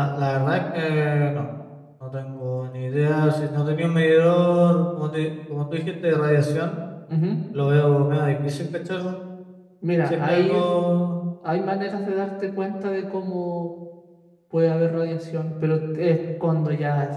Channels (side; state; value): both; identical; correlation 1.00